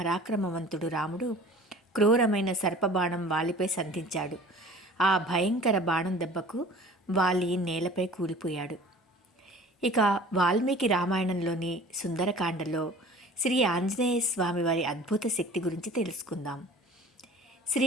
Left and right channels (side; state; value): both; normal; correlation 0.45